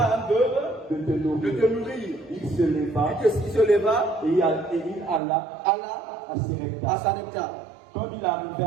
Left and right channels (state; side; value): drops out; left; at 5.2 s